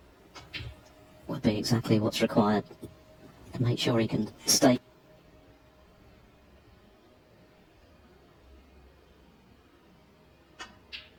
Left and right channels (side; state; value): both; identical; correlation 1.00